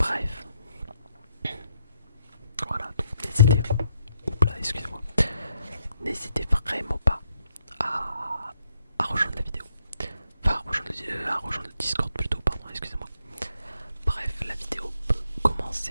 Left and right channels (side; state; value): both; inverted; correlation -0.77